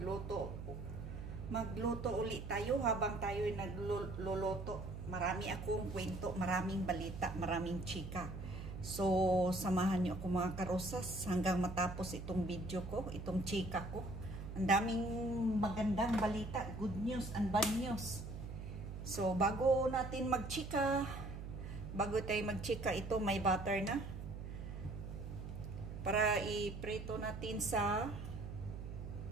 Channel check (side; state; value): right; noise; hum, 8 dB below the sound